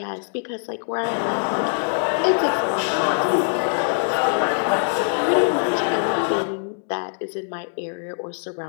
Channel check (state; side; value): silent; right; digital silence